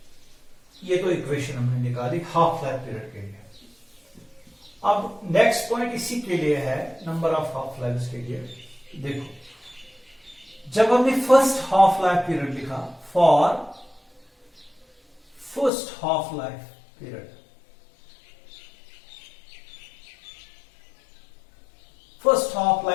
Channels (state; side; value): drops out; right; at 15.7 s